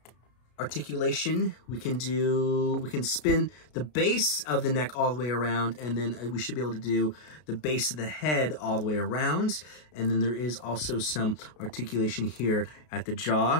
articulation. We can spin the base of the neck all the way around, and then we should be able to do the base of the head all the way around. And then there is also some articulation here at the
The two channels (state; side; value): late; right; 33 ms